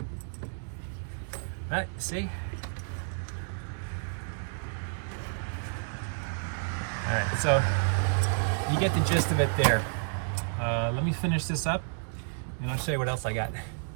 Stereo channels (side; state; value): left; silent; digital silence